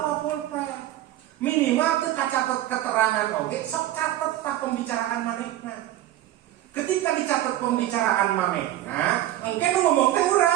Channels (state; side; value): quieter; left; 13.8 dB